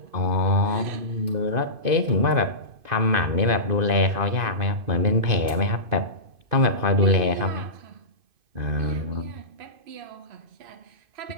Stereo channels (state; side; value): late; left; 2.5 ms